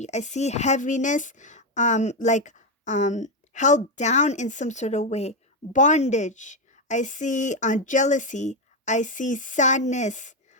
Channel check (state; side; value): normal; both; correlation 0.07